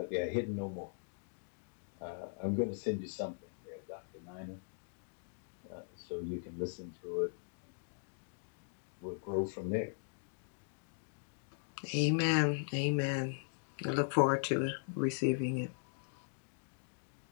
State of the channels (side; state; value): right; silent; digital silence